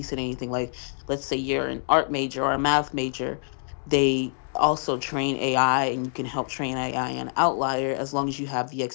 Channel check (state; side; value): silent; right; digital silence